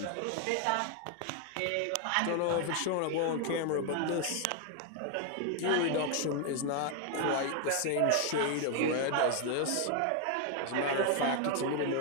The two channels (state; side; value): different; both; correlation 0.01